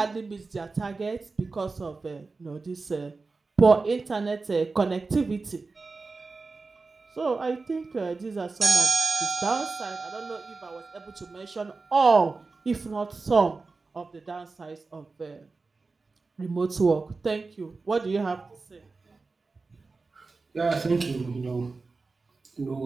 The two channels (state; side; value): quieter; left; 4.0 dB